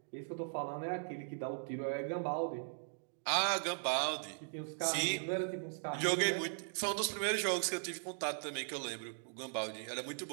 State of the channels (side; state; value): left; silent; digital silence